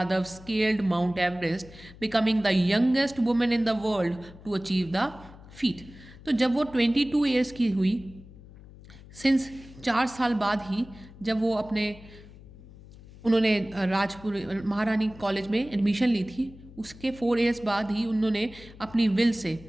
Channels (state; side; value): noise; left; hum, 19 dB below the sound